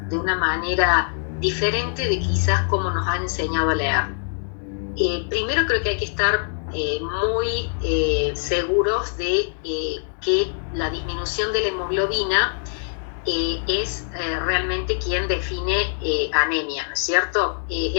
de una manera diferente de quizás como nos han enseñado a leer. Primero creo que hay que estar muy seguros de que la disminución de la hemoglobina es realmente quien define anemia, ¿no es cierto?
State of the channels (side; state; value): right; silent; 63 dB below the other